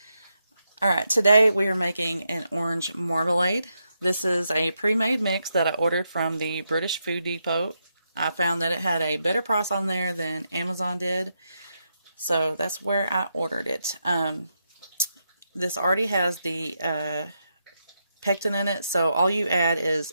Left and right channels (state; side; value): inverted; both; correlation -0.83